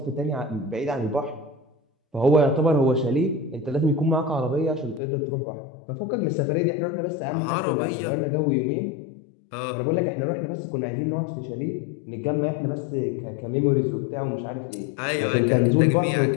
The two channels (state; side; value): drops out; right; at 5.0 s